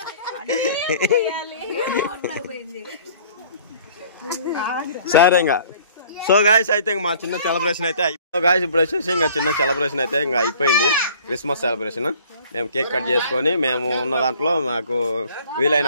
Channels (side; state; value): both; inverted; correlation -0.52